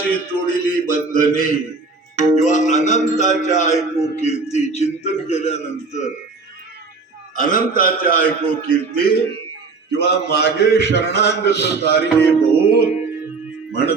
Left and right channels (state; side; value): quieter; left; 4.2 dB